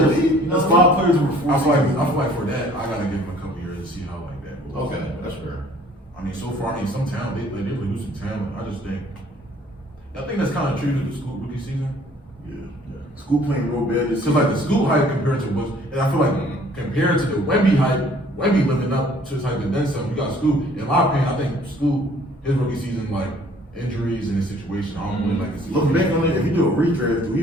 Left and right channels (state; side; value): normal; both; correlation 0.56